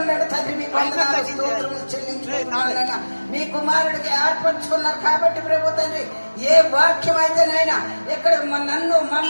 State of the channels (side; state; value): both; inverted; correlation -1.00